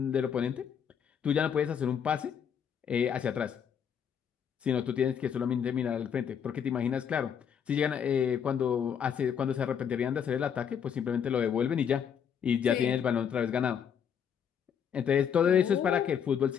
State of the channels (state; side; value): quieter; right; 7.8 dB